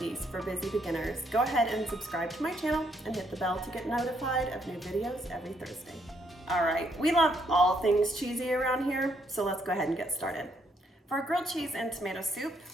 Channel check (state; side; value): normal; both; correlation 0.73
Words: for busy beginners, go ahead and subscribe to my channel and hit the bell to get notified of new videos every Thursday. All right, we love all things cheesy around here, so let's go ahead and get started. For grilled cheese and tomato soup,